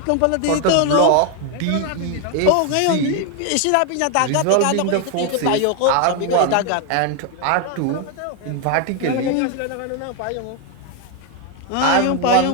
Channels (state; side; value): different; both; correlation 0.01